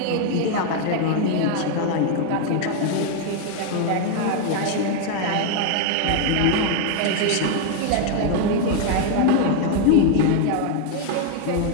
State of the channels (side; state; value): both; different; correlation 0.01